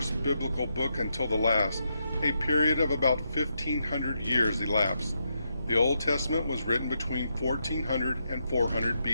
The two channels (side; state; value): both; inverted; correlation -0.82